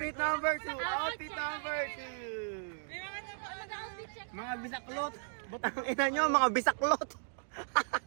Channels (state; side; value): silent; left; digital silence